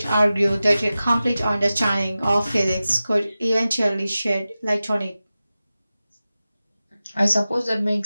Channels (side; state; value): both; inverted; correlation -0.95